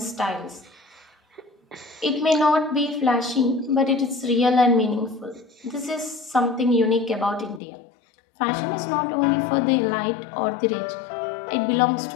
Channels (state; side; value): drops out; right; at 7.6 s